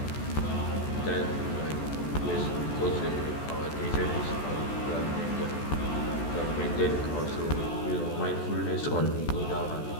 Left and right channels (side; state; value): right; late; 14 ms